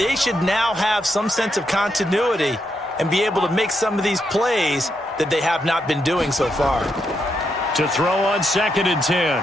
should now have some sense of continuity and be able to make some of these plays that they have not been doing so far. To throw on 2nd and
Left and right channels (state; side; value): normal; both; correlation 0.81